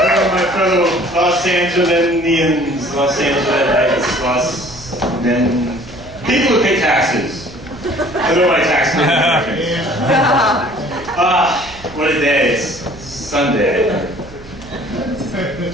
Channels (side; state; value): right; noise; hum, 19 dB below the sound